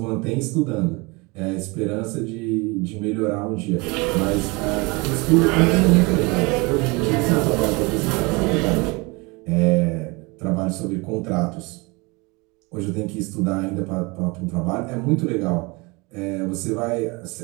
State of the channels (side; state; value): left; quieter; 26.6 dB